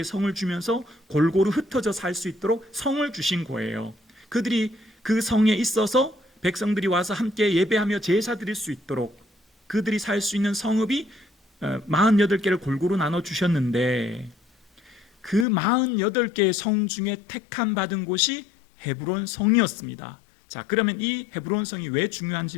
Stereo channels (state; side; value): drops out; right; at 15.5 s